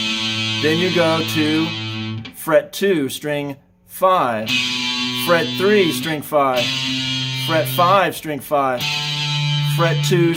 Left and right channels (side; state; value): both; identical; correlation 1.00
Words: Then you go to fret 2, string 5. Fret 3, string 5. Fret 5, string 5. Fret 2,